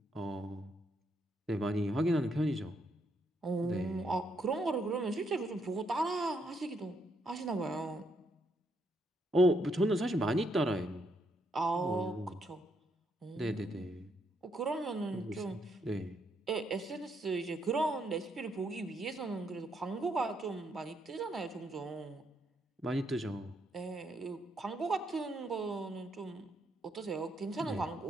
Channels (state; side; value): normal; both; correlation 0.75